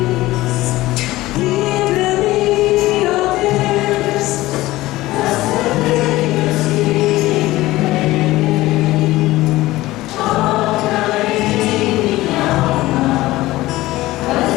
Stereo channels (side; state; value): right; quieter; 17.7 dB